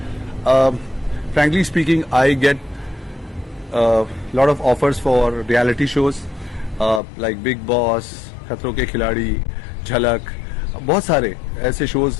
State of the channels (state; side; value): drops out; right; at 7.0 s